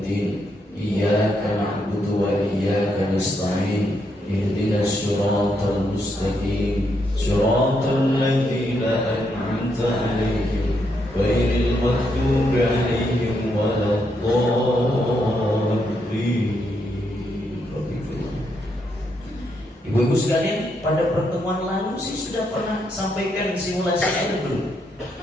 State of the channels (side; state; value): both; normal; correlation 0.78